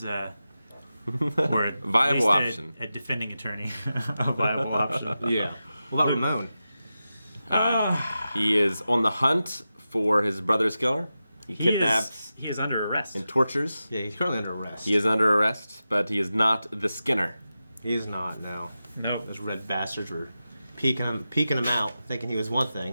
or at viable least option. A defending attorney, a viable option. Yeah. What about Ramon? He is on the hunt for his brother's killer. He kidnaps He is under arrest. and tortures. Yeah, he's currently under arrest. He is under arrest, but he is not the Skinner. He's not, no. Nope. Those red bastards were peeking him out, thinking he was one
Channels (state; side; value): inverted; both; correlation -0.92